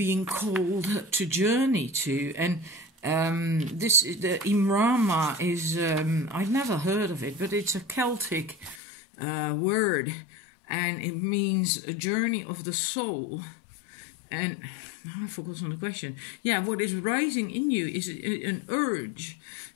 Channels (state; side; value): drops out; right; at 8.8 s